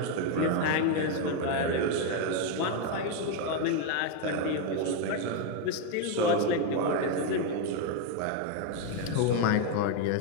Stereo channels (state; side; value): different; both; correlation 0.01